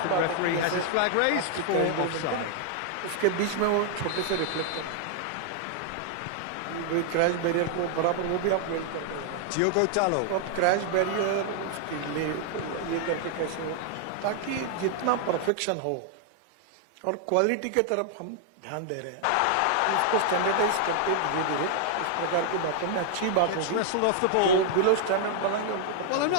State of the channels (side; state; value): both; different; correlation 0.00